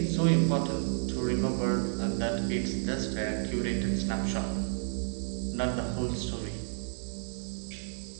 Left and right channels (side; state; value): left; silent; 57 dB below the other